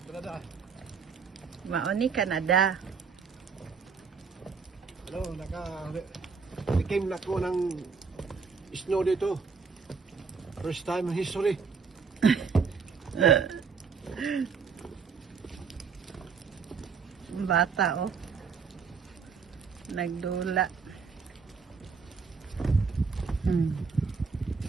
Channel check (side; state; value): left; quieter; 5.4 dB